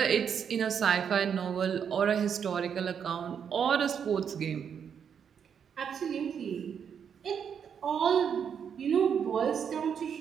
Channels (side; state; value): left; quieter; 7.6 dB